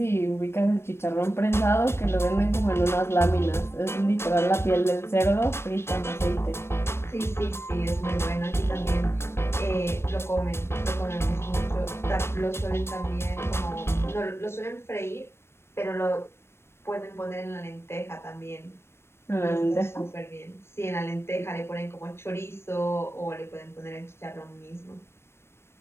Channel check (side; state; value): right; late; 0.12 ms